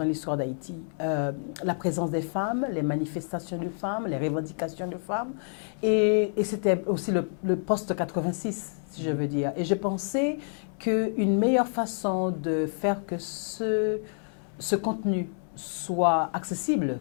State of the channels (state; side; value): silent; right; 59 dB below the other